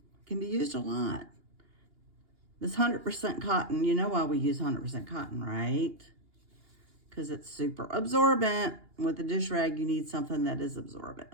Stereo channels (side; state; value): left; late; 2.8 ms